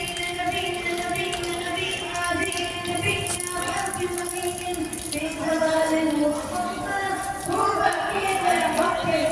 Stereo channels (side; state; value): both; identical; correlation 1.00